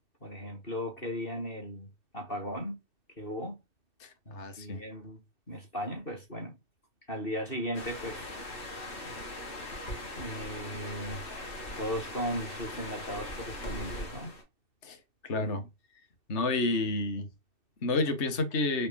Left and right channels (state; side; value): late; right; 2.6 ms